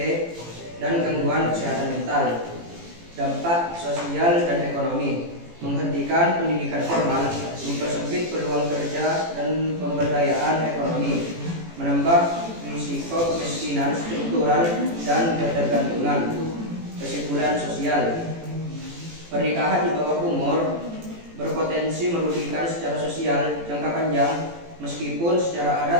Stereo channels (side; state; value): left; late; 18 ms